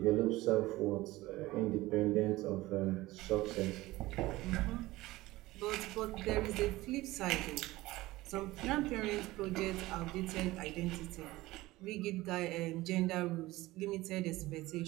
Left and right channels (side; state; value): left; quieter; 18.6 dB